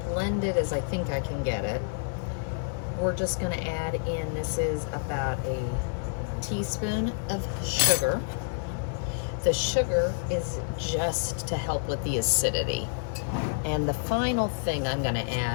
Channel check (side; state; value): right; silent; digital silence